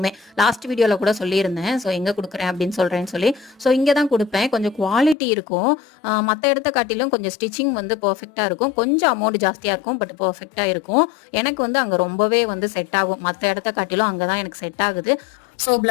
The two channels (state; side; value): drops out; right; at 5.2 s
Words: லாஸ்ட் வீடியோவில் கூட சொல்லியிருந்தேன். ஸோ எங்கே கொடுக்குறேன் அப்படின்னு சொல்கிறேன்னு சொல்லி. ஸோ இங்கே தான் கொடுப்பேன். கொஞ்சம் குவாலிட்டி இருக்கும். மற்ற இடத்த காட்டிலும் கொஞ்சம் ஸ்டிச்சிங் வந்து பர்ஃபெக்டாக இருக்கும். கொஞ்சம் அமௌண்ட் ஜாஸ்தியாக இருக்கும், பட் பர்ஃபெக்டாக இருக்கும். எனக்கு வந்து அங்கே ரொம்பவே வந்து செட் ஆகும். மற்ற இடத்த காட்டிலும் அங்கே தான் எனக்கு செட் ஆகுது. ஸோ